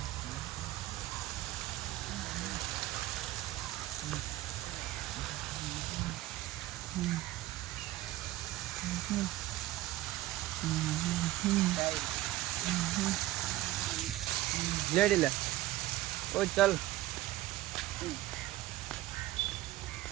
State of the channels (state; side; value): quieter; left; 16.1 dB